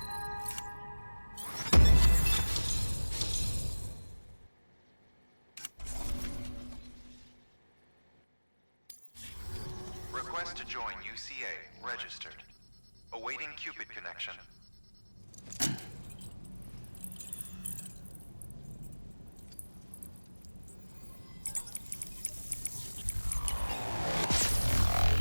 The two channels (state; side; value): inverted; both; correlation -1.00